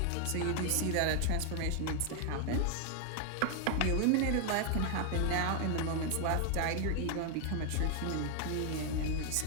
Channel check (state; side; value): different; both; correlation 0.00